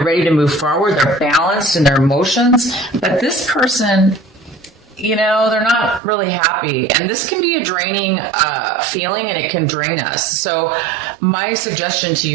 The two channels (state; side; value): drops out; left; at 6.0 s